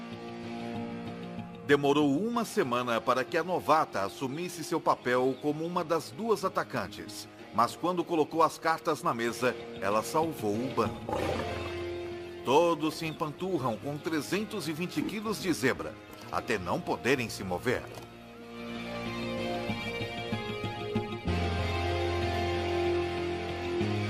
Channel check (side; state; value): both; identical; correlation 1.00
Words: Demorou uma semana para que a novata assumisse seu papel como uma das duas atacantes, mas quando colocou as cartas na mesa, ela salvou o bando. Todos se empanturram com 320 quilos de zebra, até não poderem se mover.